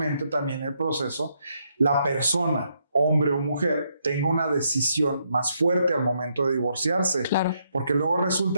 también el proceso, la persona, hombre o mujer, tenga una decisión más fuerte al momento de divorciarse. Porque luego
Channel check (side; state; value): both; inverted; correlation -0.76